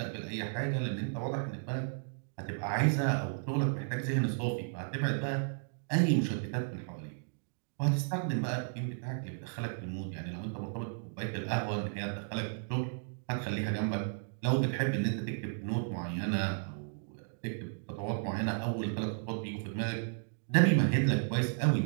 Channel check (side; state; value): left; silent; digital silence